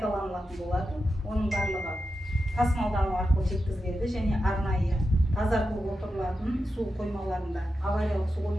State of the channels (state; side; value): normal; both; correlation 0.89